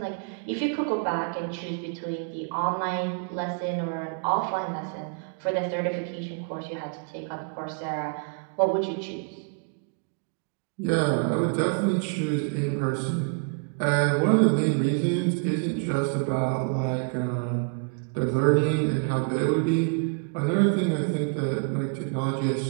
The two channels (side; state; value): left; quieter; 37.5 dB